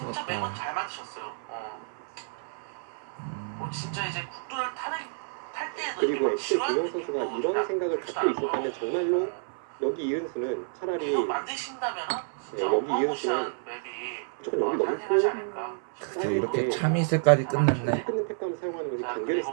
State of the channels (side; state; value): left; silent; 58 dB below the other